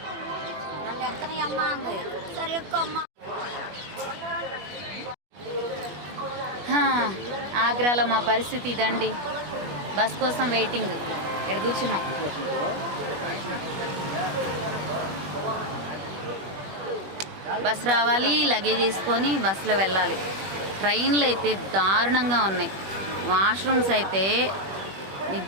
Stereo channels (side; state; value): left; late; 21 ms